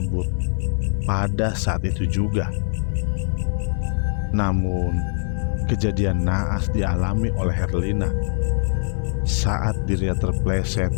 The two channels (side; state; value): right; silent; 60 dB below the other